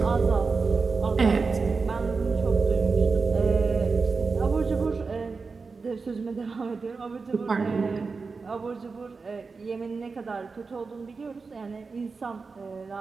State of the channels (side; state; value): left; quieter; 4.5 dB